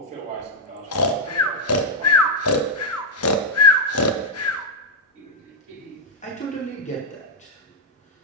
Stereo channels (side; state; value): both; normal; correlation -0.03